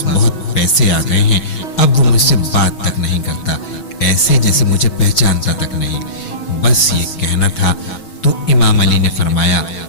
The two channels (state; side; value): late; right; 6.2 ms